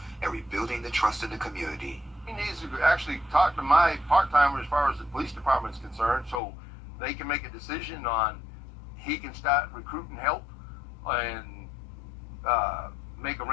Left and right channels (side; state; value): right; drops out; at 6.4 s